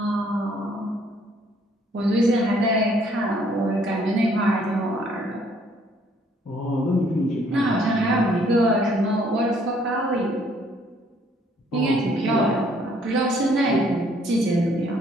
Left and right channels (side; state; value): both; normal; correlation 0.64